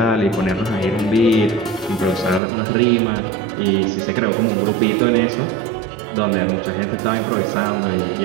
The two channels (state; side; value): drops out; left; at 2.4 s